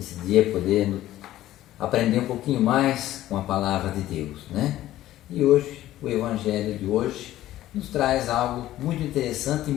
dia, poder aprender um pouquinho mais com a palavra de Deus, né? E hoje, o Evangelho de hoje nos traz algo muito interessante e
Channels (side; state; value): right; quieter; 14.3 dB